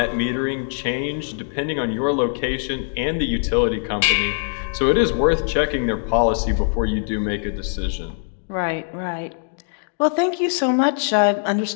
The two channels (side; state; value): right; silent; digital silence